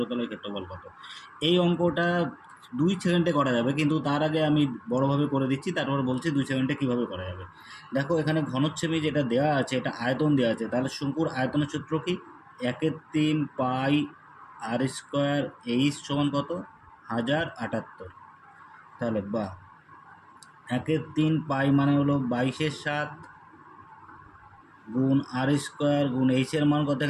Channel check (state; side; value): identical; both; correlation 1.00